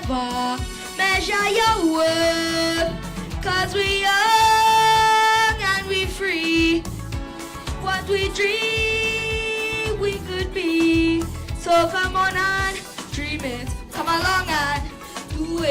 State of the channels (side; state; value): both; identical; correlation 1.00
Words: measure your worth. 'Cause we young and we free. What we dream we could be. So come on and dream it. Come along and do